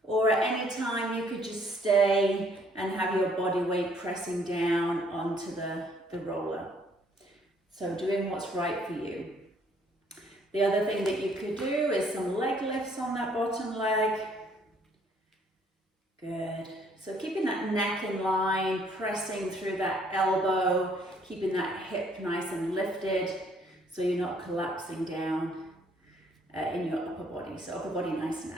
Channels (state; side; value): normal; both; correlation 0.63